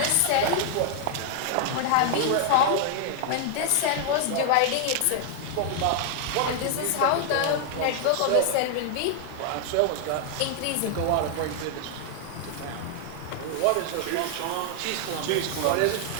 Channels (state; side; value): different; both; correlation 0.00